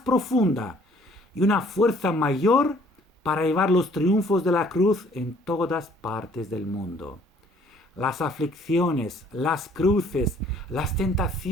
profunda y una fuerza mayor para llevar los triunfos de la cruz en todas partes del mundo. Las aflicciones, las cruces, las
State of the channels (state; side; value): normal; both; correlation 0.59